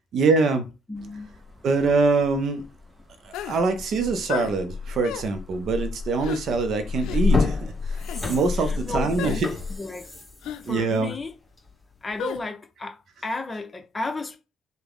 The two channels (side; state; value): both; normal; correlation 0.66